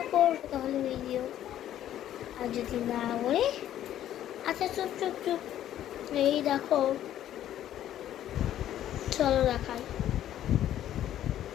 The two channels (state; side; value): quieter; right; 11.8 dB